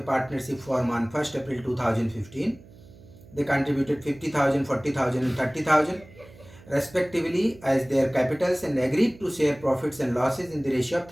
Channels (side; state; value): right; noise; hum, 22 dB below the sound